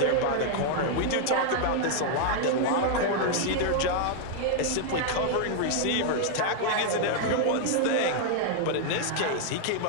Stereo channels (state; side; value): different; both; correlation 0.00